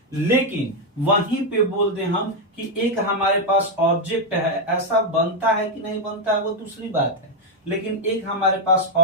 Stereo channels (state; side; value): normal; both; correlation 0.02